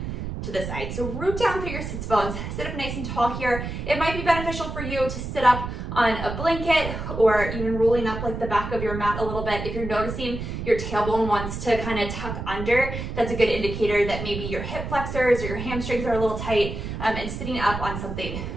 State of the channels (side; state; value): right; noise; rumble, 6 dB below the sound